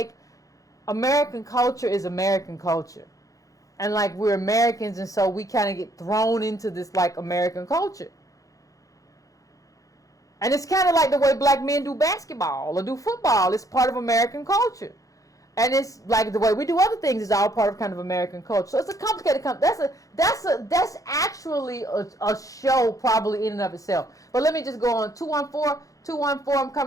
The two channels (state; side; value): late; right; 0.16 ms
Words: American culture is American culture. And, like, we're Americans, and so we kind of get thrown into this, like, American culture. And it's kind of like the way black men do basketball or do football. It's part of American culture. And it's like the way we do other things is all part of kind of American culture. So it's a complicated. That's actually a show probably in and of itself. But let me just go on. 214. I'm